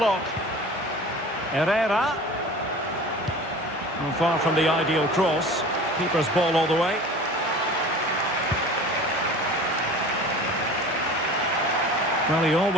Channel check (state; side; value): normal; both; correlation 0.39